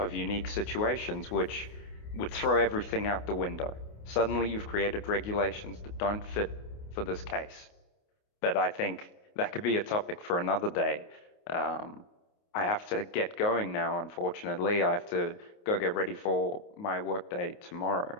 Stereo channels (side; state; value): right; late; 28 ms